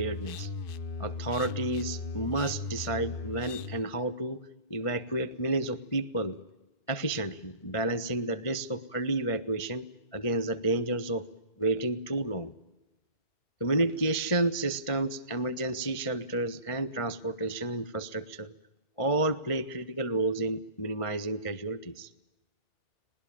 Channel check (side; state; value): right; late; 1.5 ms